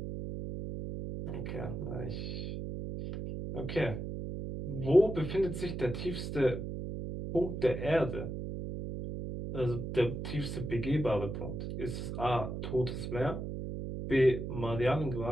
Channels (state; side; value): noise; right; hum, 5 dB below the sound